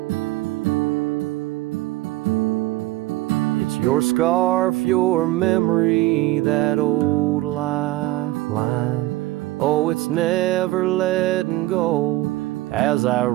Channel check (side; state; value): left; quieter; 17.8 dB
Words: it's your scarf, your memory, that old lifeline. Oh, it's never letting go as I